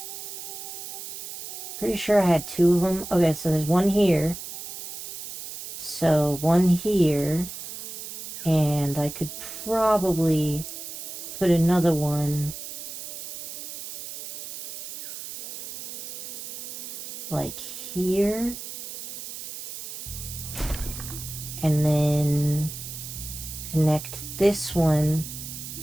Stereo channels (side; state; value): right; noise; hiss, 9 dB below the sound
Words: Pretty sure I had 2 of them. Okay, so there's one here. So one here. And I could probably put another one like here. And then connect this one